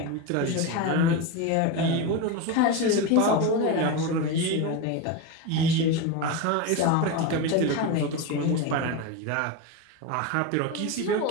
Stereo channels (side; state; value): both; different; correlation 0.05